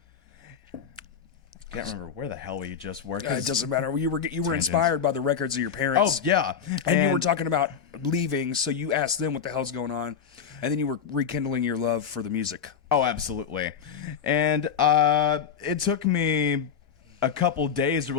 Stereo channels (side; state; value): right; quieter; 7.3 dB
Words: Can't remember where the hell we just were. It doesn't matter. You were inspired by the records of your parents. Oh yeah, and you were talking about leaving, so you asked them what the hell's going on, and then you were rekindling your love for the music. Oh, absolutely. And it took me a couple days to